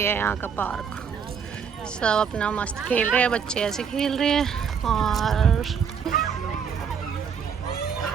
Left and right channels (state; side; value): quieter; left; 6.8 dB